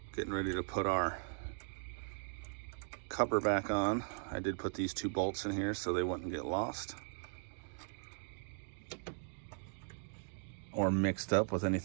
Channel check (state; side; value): silent; left; digital silence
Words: Getting ready to put our cover back on. I did put these 2 bolts in here so they wouldn't get lost or mixed up with